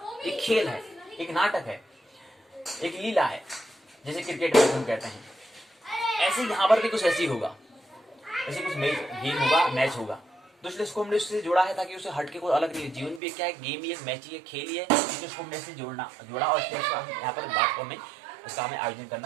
एक खेल है, एक नाटक है, एक लीला है, जैसे क्रिकेट मैच हम कहते हैं। ऐसे यहाँ पर भी कुछ ऐसी होगा, ऐसे कुछ गेम होगा, मैच होगा, तो इसलिए इसको हमने उससे जोड़ा है ताकि उसे हट के कोई अलग नहीं। जीवन भी क्या है, गेम ही है, मैच ही है, खेल ही है, तो इसको हमने इससे जोड़ा और यहाँ पर बात को हमें इसका हमें आयोजन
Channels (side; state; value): left; drops out; at 13.2 s